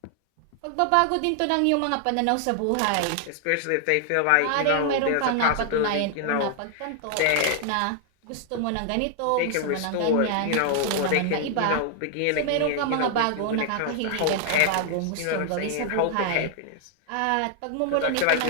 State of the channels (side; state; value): both; different; correlation 0.00